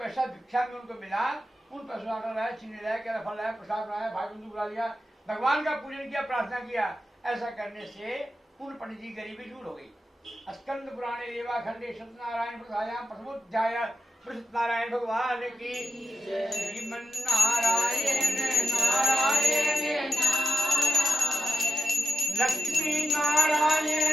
भिक्षा में उनको मिला उन पैसों आटा लाया, चीनी लाया, केला फल लाया, प्रसाद बनाया, भाई बंधु बुला लिया, भगवान का पूजन किया, प्रार्थना किया। ऐसा करने से उन पंडित जी गरीबी दूर हो गई। स्कंद पुराणे रेवा खंडे सत्यनारायण प्रसायाम प्रथमोध्याय सत्यनारायण भगवान की। श्रीमन नारायण नारायण लक्ष्मी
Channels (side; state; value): both; normal; correlation 0.89